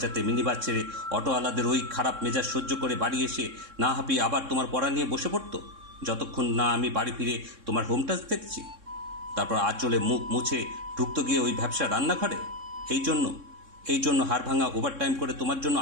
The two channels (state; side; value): late; left; 3.6 ms